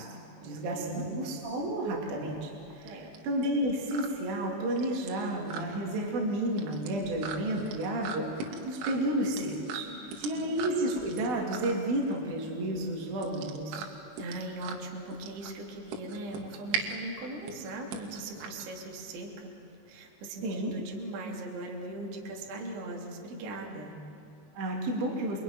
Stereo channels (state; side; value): late; left; 20 ms